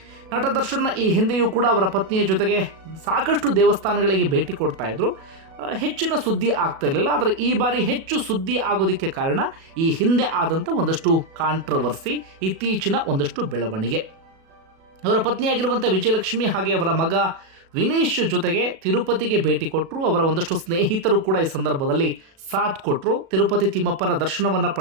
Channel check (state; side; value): late; left; 37 ms